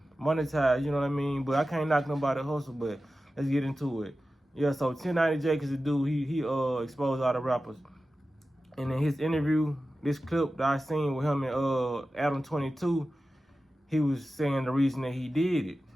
monetize, you know what I mean? But I can't knock nobody hustle, but let's get into it. Yeah, so 1090 Jake is a dude, he exposed all the rappers. And in his interview, this clip that I seen with him and Adam 22, he was saying the reason that he did it.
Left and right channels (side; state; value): both; normal; correlation 0.94